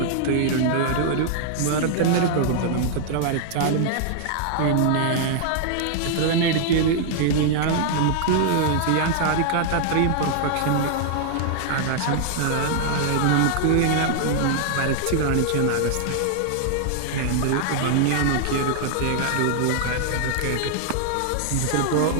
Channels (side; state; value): both; different; correlation -0.01